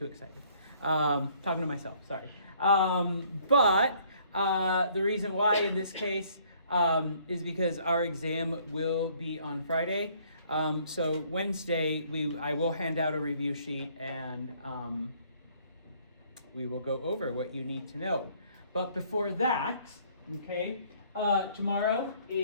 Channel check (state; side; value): inverted; both; correlation -0.61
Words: excited. Talking to myself, sorry. But the reason why in this case is because our exam will be on Friday. So Wednesday, I will hand out a review sheet and we will go over what you need to know. But before that, okay, tomorrow,